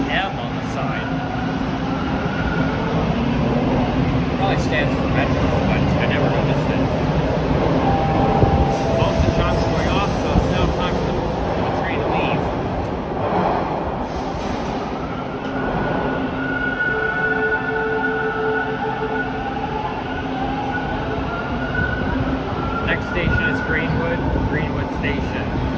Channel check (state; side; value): identical; both; correlation 1.00